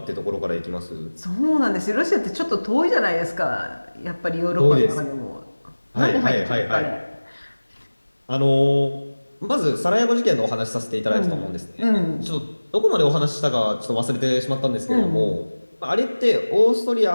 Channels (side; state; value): both; inverted; correlation -1.00